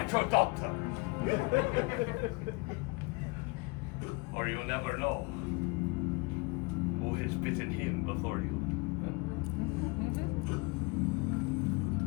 your doctor. Or you'll never know who has bitten him before you.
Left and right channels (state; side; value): quieter; right; 28.3 dB